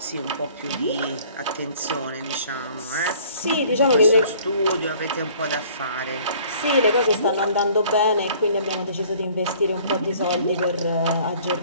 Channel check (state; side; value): inverted; both; correlation -0.54